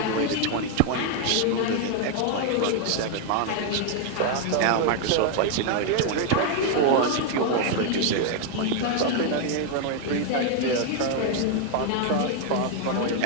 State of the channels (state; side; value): different; both; correlation 0.01